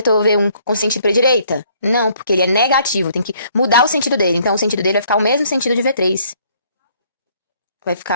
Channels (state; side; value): inverted; both; correlation -0.64